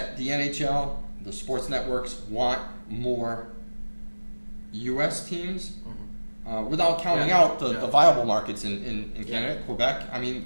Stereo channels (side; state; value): both; inverted; correlation -1.00